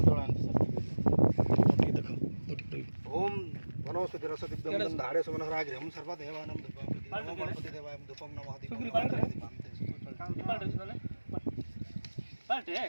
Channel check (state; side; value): inverted; both; correlation -1.00